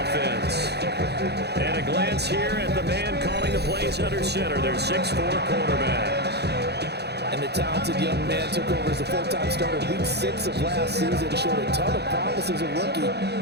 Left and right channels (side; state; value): left; late; 0.48 ms